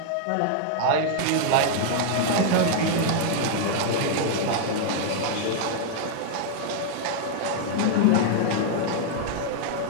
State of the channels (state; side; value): different; both; correlation 0.00